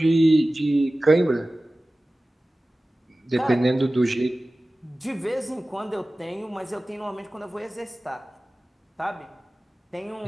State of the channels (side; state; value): both; normal; correlation 0.97